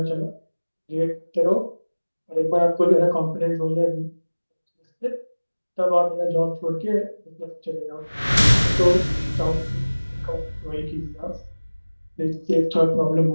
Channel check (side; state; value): both; inverted; correlation -1.00